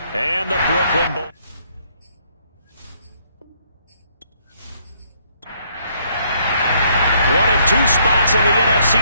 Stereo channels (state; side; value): inverted; both; correlation -0.69